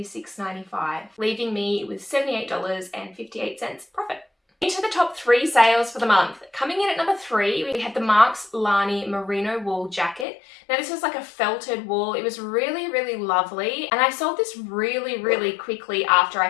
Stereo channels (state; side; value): drops out; right; at 10.2 s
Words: leaving me with $78.58 profit. Into the top 3 sales for the month. Coming in at number 3, we had the Marks Lani merino wool jacket. Now this was like a felted wool. It was really, really lovely. And I sold this really, really quickly after I